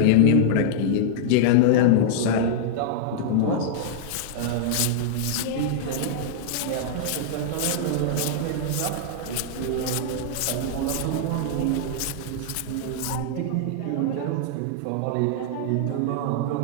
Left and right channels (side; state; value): both; different; correlation -0.01